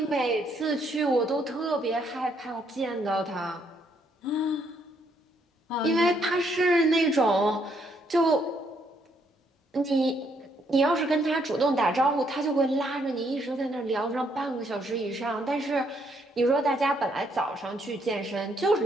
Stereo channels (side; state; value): both; normal; correlation 0.72